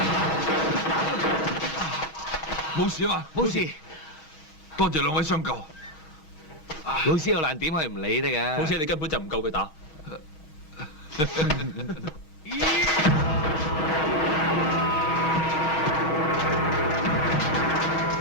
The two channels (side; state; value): right; late; 6.4 ms